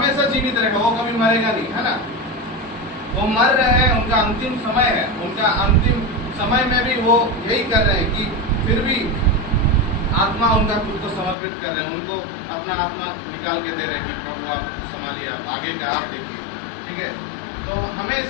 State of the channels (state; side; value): drops out; right; at 11.4 s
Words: जीवित रहेगा, वो कभी मरेगा नहीं, है ना। वो मर रहे हैं, उनका अंतिम समय है, उनका अंतिम समय में भी वो यही कर रहे हैं कि फिर भी आत्मा उनका खुद को समर्पित कर रहे हैं, उनको अपना आत्मा निकाल के दे रहे हैं कि प्रभु आप संभालिए, आप आगे का आप देखिए, ठीक है। तो हमें